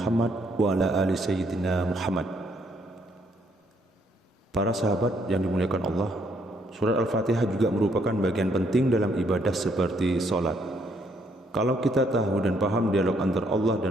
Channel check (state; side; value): normal; both; correlation 0.70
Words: wa ala ali sayyidina Muhammad. Para sahabat yang dimuliakan Allah, surat Al-Fatihah juga merupakan bagian penting dalam ibadah seperti sholat. Kalau kita tahu dan paham dialog antara Allah